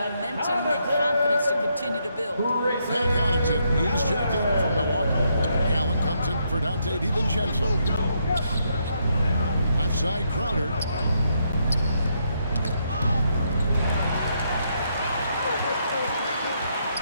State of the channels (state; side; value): inverted; both; correlation -0.76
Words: and confidence to continue to build. Pat Connaughton, he's checked in from Milwaukee. Allen comes in for Dante DiVincenzo. Left side, Crowder.